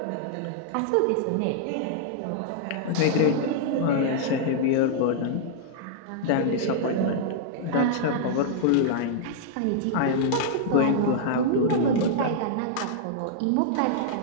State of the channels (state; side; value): different; both; correlation -0.01